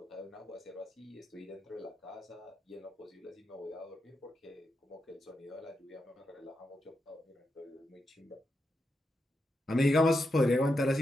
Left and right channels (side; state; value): both; normal; correlation 0.85